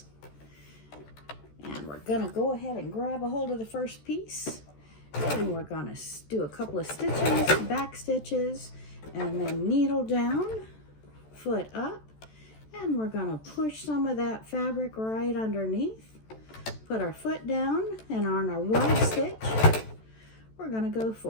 And we're going to go ahead and grab a hold of the first piece. And we're going to do a couple of stitches, back stitches, and then needle down, foot up. And we're going to push some of that fabric right underneath. Put our foot down, and on our wide stitch, we're going to go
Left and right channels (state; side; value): late; right; 14 ms